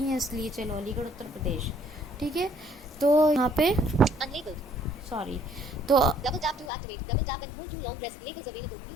हैं इसलिए चलो अलीगढ़ उत्तर प्रदेश। ठीक है, तो यहाँ पे सॉरी, तो Double tap to activate. Double tap and hold too long. Press labels available.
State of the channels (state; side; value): drops out; right; at 6.7 s